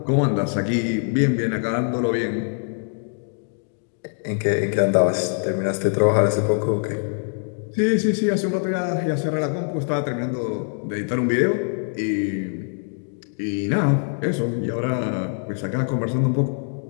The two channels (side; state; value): right; silent; 63 dB below the other